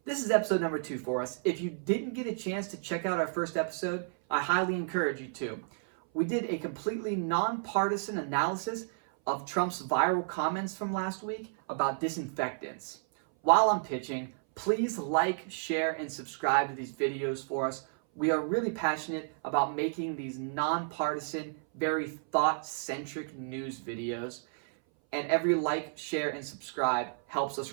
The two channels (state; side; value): silent; left; 57 dB below the other